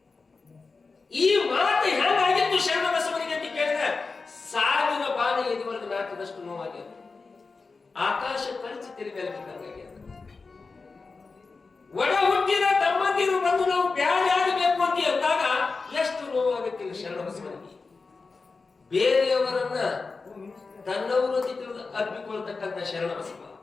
ಈ ಮಾತು ಹೆಂಗಾಗಿತ್ತು ಶರಣ ಬಸವನಿಗೆ ಅಂತ ಕೇಳಿದ್ರೆ ಸಾವಿರ ಬಾಣ ಎದುವರೆಗೆ ನಾಟದಷ್ಟು ನೋವಾಗ್ಯದ. ಆಕಾಶ ಕಳಚಿ ತೆರೆ ಮೇಲೆ ಬಿದ್ದಂಗಾಗ್ಯದ. ಒಡ ಹುಟ್ಟಿದ ತಮ್ಮಂದಿರು ಬಂದು ನಾವು ಬ್ಯಾರೆ ಆಗಬೇಕು ಅಂತ ಅಂದಾಗ ಎಷ್ಟು ನೋವಾಗುತ್ತಿಲ್ಲ ಶರಣ ಬಸವನಿಗೆ. ಬೇರೆಯವರನ್ನ ತನ್ನವರು ಅಂತ ತಿಳಿದು ಅರ್ಪಿಕೊಳ್ತಕ್ಕಂಥ ಶರಣ ಬಸವ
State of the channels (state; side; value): quieter; right; 4.2 dB